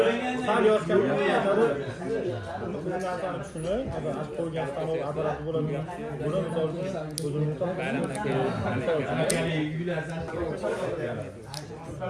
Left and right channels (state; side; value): identical; both; correlation 1.00